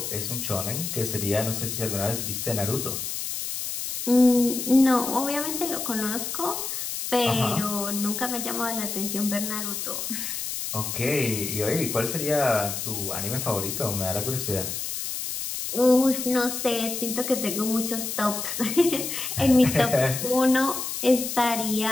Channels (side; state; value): left; noise; hiss, 4 dB below the sound